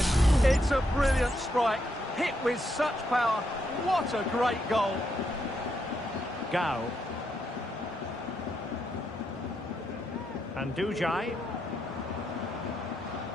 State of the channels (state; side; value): normal; both; correlation 0.79